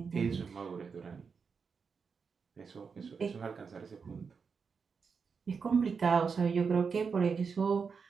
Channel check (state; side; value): quieter; left; 5.6 dB